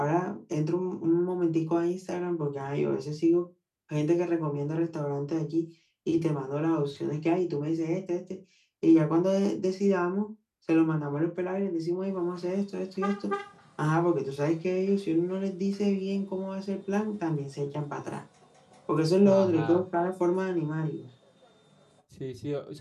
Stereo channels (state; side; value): identical; both; correlation 1.00